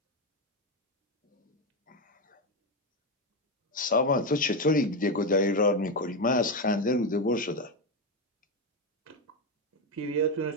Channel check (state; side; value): normal; both; correlation 0.10